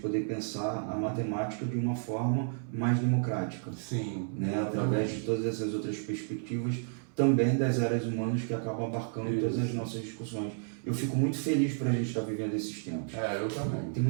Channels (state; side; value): silent; left; 57 dB below the other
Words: pensar a matemática de uma forma mais democrática, Sim, né? Através de todas essas outras perspectivas, também das áreas humanas que acabam abarcando Isso. todas as nossas discussões. Eu fico muito feliz para a gente estar vivendo esses tempos. eu também. Tem